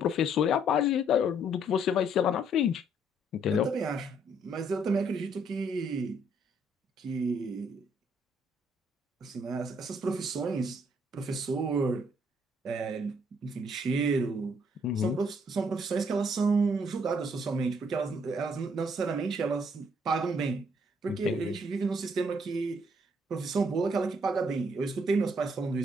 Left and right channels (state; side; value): normal; both; correlation 0.67